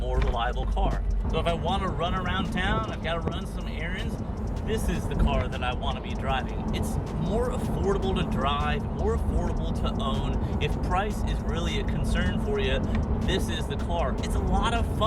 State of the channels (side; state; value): both; identical; correlation 1.00